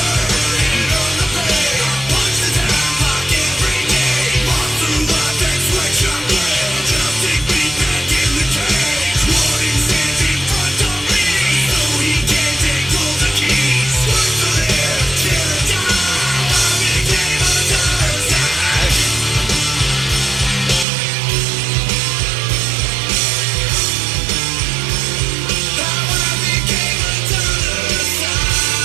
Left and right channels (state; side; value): drops out; left; at 20.9 s